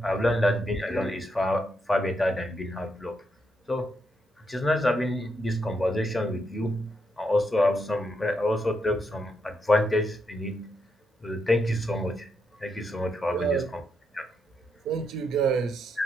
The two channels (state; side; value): normal; both; correlation 0.80